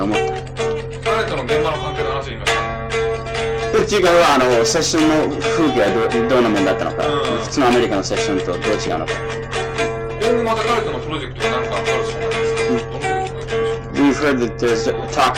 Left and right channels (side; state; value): both; identical; correlation 1.00